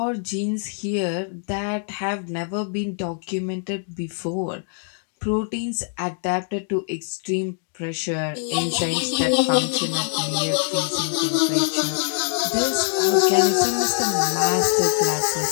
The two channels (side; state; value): right; silent; 55 dB below the other